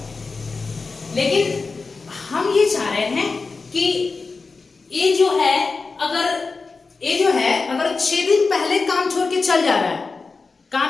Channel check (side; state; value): right; quieter; 4.2 dB